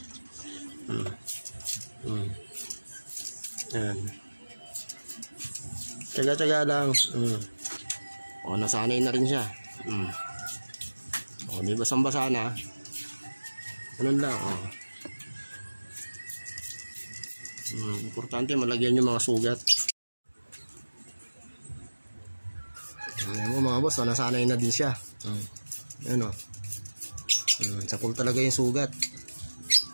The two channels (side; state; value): both; inverted; correlation -1.00